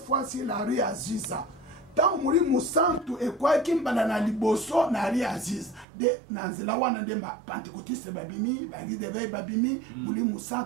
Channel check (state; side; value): drops out; left; at 5.9 s